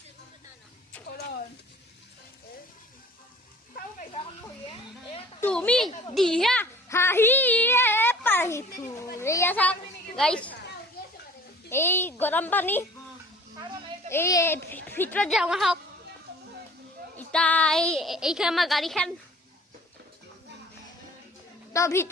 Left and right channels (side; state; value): both; normal; correlation 0.49